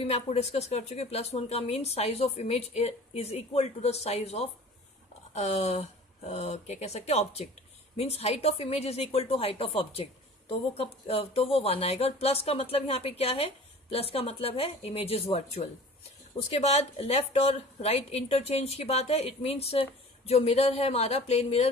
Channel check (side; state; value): both; normal; correlation 0.44